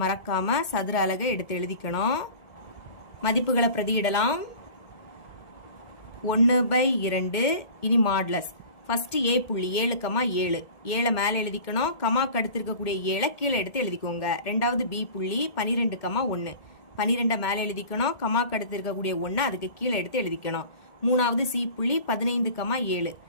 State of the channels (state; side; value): late; right; 1.7 ms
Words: மறக்காம சதுர அலகை எடுத்து எழுதிக்கணும். மதிப்புகளை பிரதியிடலாம். 1/2 இனி மாடுலஸ். ஃபர்ஸ்ட் A புள்ளி 7, 7. 7 மேல எழுதிக்கணும். கமாக்கு அடுத்து இருக்கக்கூடிய 7 கீழே எடுத்து எழுதிக்கோங்க. ரெண்டாவது B புள்ளி 12, 1. 12 மேல எழுதிக்கணும். கமாக்கு அடுத்து இருக்கக்கூடிய 1 அதுக்கு கீழே எடுத்து எழுதிக்கணும். மூணாவது C புள்ளி 15, 7.